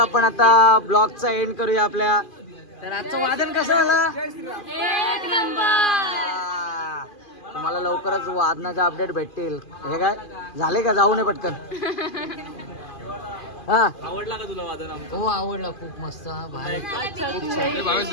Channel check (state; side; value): late; right; 2.4 ms